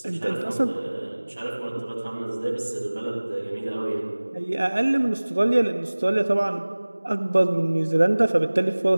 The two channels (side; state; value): both; inverted; correlation -1.00